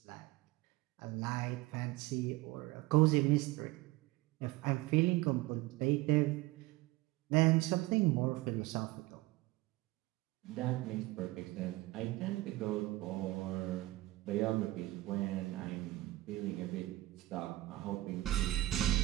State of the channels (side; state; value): left; quieter; 18.8 dB